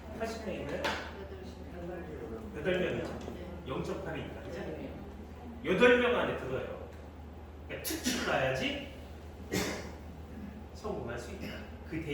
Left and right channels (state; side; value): identical; both; correlation 1.00